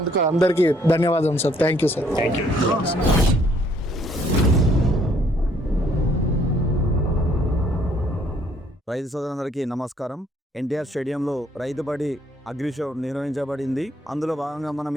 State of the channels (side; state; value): both; normal; correlation 0.65